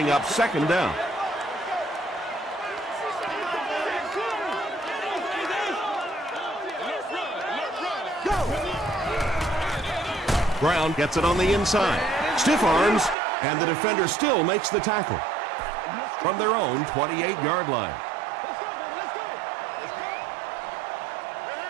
up second down. Brown gets it on the inside. Stiff arms, and the defender still makes the tackle from their own 28-yard line.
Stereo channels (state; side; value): drops out; left; at 13.2 s